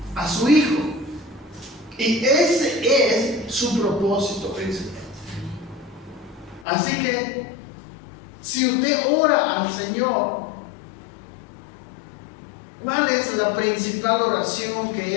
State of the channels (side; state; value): right; drops out; at 6.7 s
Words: a su Hijo. Y ese es su propósito principal. Así que, si usted ora al Señor, ¿cuál es la principal oración que